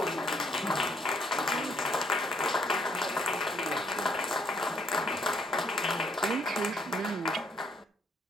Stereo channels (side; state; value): both; normal; correlation 0.68